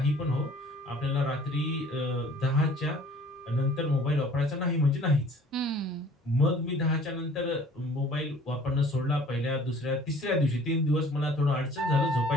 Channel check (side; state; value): both; normal; correlation 0.52